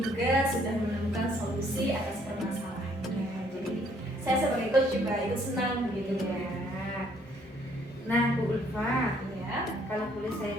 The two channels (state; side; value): normal; both; correlation 0.64